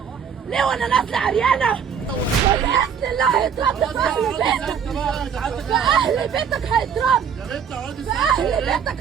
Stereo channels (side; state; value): left; quieter; 7.4 dB